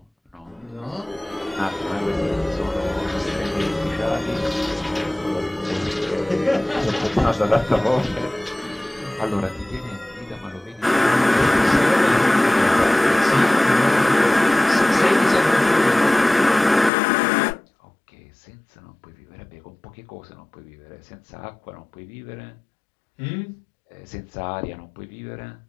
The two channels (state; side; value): drops out; right; at 16.9 s